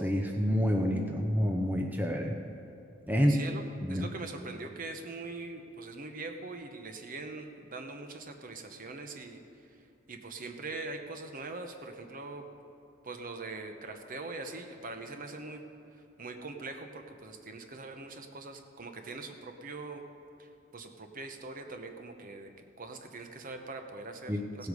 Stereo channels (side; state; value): both; normal; correlation 0.77